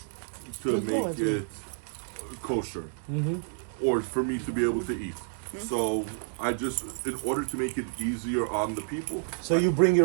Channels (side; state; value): left; silent; digital silence